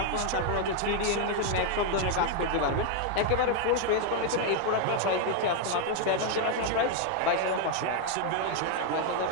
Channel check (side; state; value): both; different; correlation 0.01